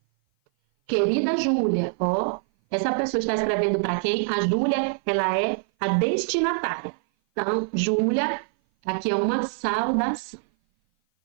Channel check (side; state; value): left; silent; 57 dB below the other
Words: Querida Júlia, essa pessoa está escrevendo para quem? A Júlia, ela é a destinatária. Então, Júlia, aqui é uma saudação.